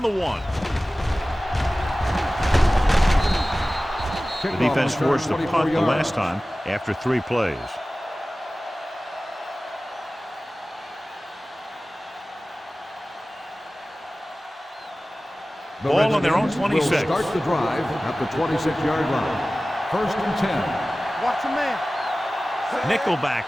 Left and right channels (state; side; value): normal; both; correlation 0.97